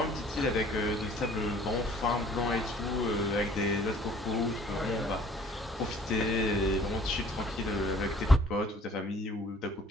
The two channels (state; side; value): normal; both; correlation 0.54